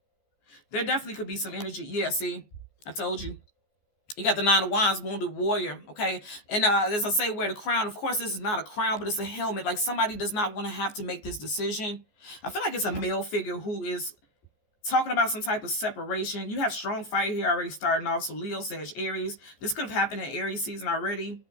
There definitely could be some energy. Yeah, see, I told you. You got the Nine of Wands, wounded warrior, okay? And as I say, wear the crown. Of course, this is not a crown, but it's a helmet. Like somebody does not want to have to make this decision. I feel like it's a male figure who is talking about some type of separation. You have strong fire here already starting off. So Leo, Sag, Aries. This could have happened in Aries season already.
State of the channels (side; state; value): right; late; 14 ms